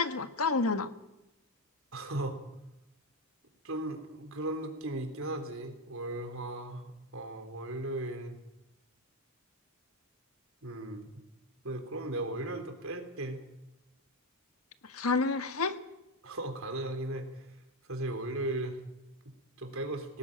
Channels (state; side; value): normal; both; correlation 0.10